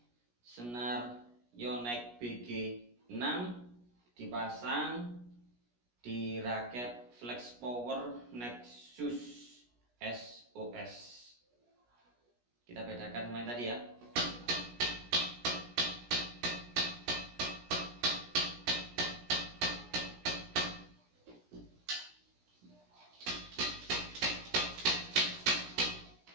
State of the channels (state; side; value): late; left; 17 ms